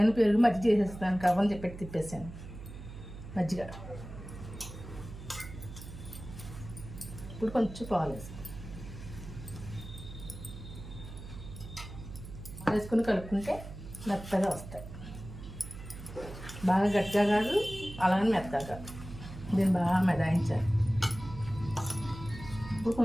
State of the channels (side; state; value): right; noise; hum, 12 dB below the sound